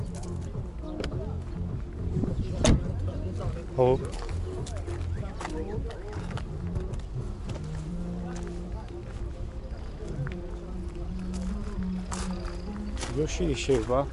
хоб Yoshi şey var.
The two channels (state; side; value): identical; both; correlation 1.00